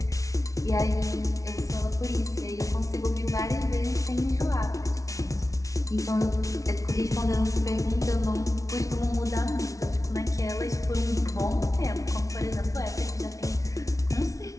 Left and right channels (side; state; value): right; late; 0.16 ms